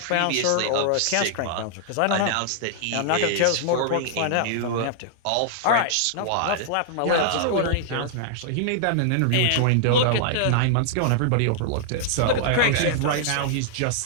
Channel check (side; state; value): both; different; correlation -0.01